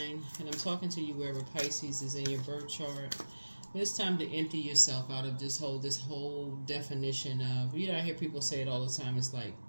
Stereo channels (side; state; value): both; inverted; correlation -1.00